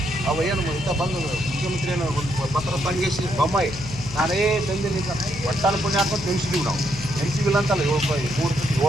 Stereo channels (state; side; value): noise; left; hum, 11 dB below the sound